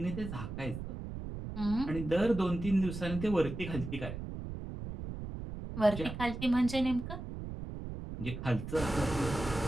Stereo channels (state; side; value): noise; right; rumble, 8 dB below the sound